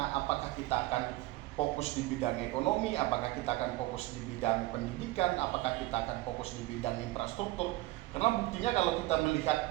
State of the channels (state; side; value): quieter; left; 18.7 dB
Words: Apakah kita akan fokus di bidang ekonomi? Apakah kita akan fokus di bidang pendidikan? Apakah kita akan fokus di bidang infrastruktur? Karena buktinya kalau kita